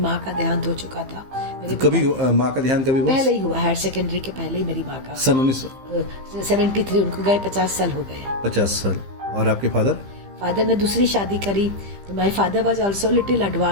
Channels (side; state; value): left; late; 15 ms